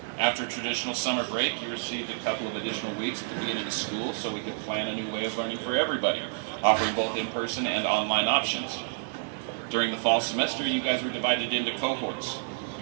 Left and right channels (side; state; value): left; silent; digital silence